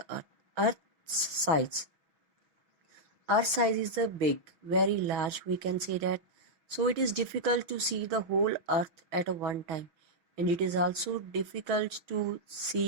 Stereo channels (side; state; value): left; late; 6.2 ms